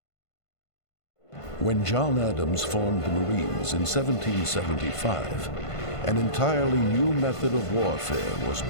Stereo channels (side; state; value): right; late; 1.5 ms